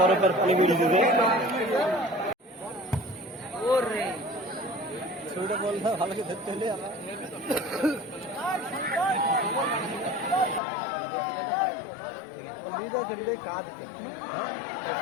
পানি বেরিয়ে দিতে ছবিটা বললে ভালো করে ধরতে হলে লিড আছে লিডে কাজ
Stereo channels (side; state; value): right; drops out; at 10.6 s